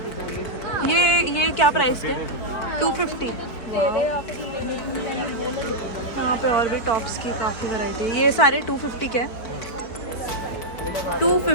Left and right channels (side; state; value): right; late; 4.6 ms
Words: ये क्या प्राइस के? 250। यहाँ पे और भी टॉप्स की काफ़ी वैरायटी है। ये सारे 250 के हैं।